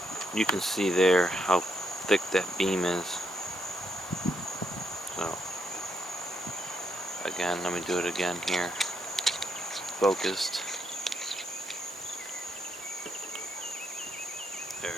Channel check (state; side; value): normal; both; correlation 0.78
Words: You can see there how thick that beam is. So, again, let me do it again here. Focused. There